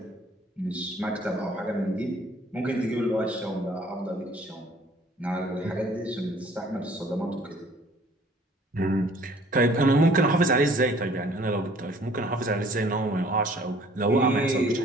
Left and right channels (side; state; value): both; normal; correlation 0.55